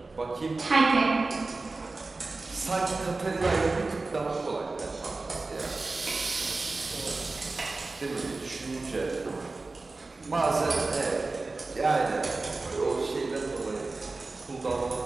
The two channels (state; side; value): quieter; left; 3.5 dB